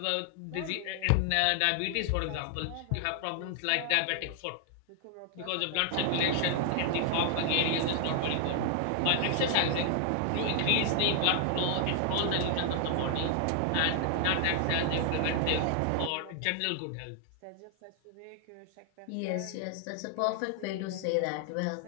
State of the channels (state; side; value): different; both; correlation 0.00